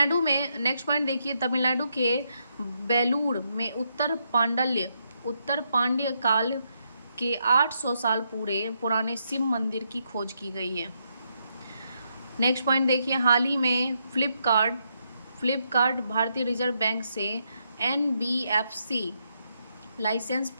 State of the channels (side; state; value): both; inverted; correlation -0.79